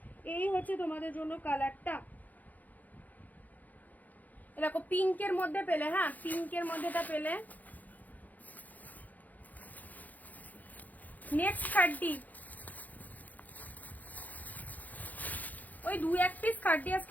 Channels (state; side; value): late; right; 0.081 ms